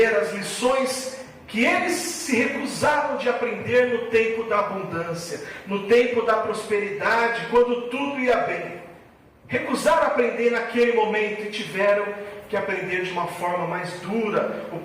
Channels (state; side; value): identical; both; correlation 1.00